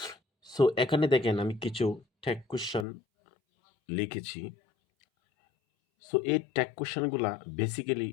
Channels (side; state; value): right; drops out; at 2.9 s